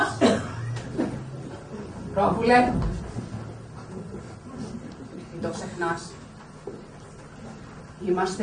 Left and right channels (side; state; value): both; identical; correlation 1.00